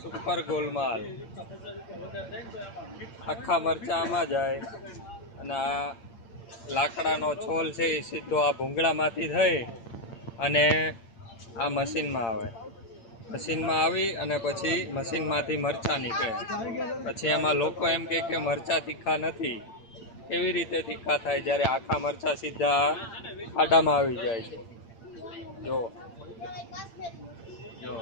સુપર ગોલમાલ. આખા મરચા આમાં જાય અને આ લાકડાનો છોલ છે એ સીધો આ ભૂંગળામાંથી થઈ અને આ મશીનમાં આવે. મશીનમાં આવી અને પછી મશીનમાંથી મરચાં નીકળે. પછી એમાં લોકો એમ કહે કે મરચાં તીખા નથી. એવી રીતે તીખા થાય જ્યારે આખા મરચાં સીધા ખાડામાં આવી જાય છે. જો જો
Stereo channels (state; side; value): late; right; 8.8 ms